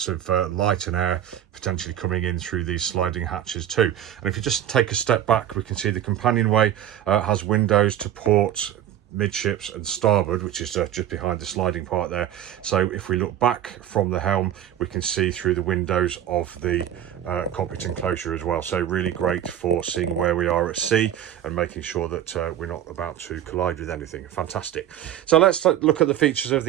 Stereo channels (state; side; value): quieter; left; 11.1 dB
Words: of light and air potentially coming in through these sliding hatches too. And if you just take a step back, we can see the companionway has windows to port, midships and starboard, which is just behind the sliding part there. So if we look back from the helm, we can see through the windows of the cockpit enclosure as well. So really great for seeing where we are at sea and making sure that we're not about to collide with anything. Fantastic. So let's look at the features of